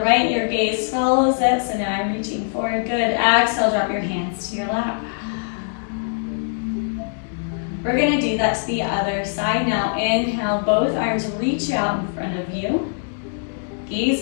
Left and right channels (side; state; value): right; silent; digital silence